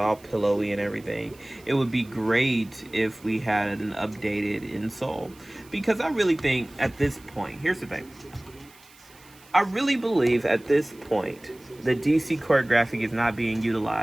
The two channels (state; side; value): noise; right; hiss, 25 dB below the sound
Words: pillowy and everything. It would be great if we had an updated insole, because I really think at this point, here's the thing. I really believe at this point the DC Court Graphic is not being